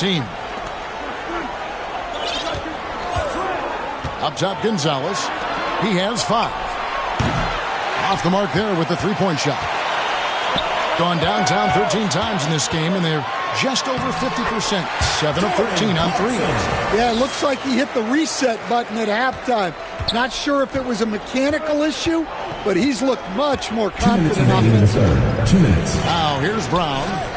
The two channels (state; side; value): identical; both; correlation 1.00